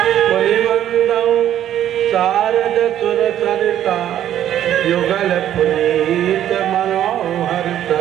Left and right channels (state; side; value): quieter; left; 11.2 dB